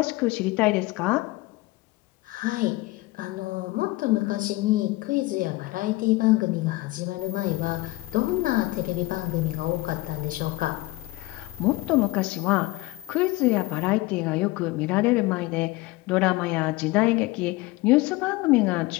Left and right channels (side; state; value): right; quieter; 20.3 dB